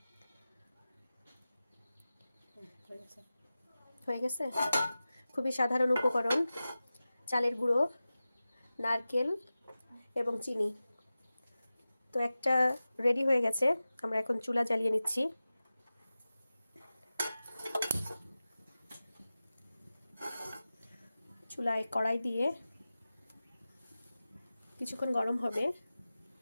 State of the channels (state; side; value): inverted; both; correlation -0.95